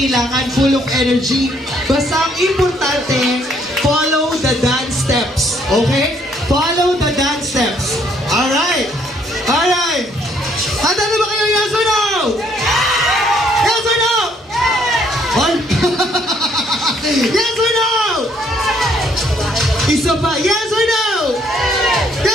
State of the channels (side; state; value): both; normal; correlation 0.67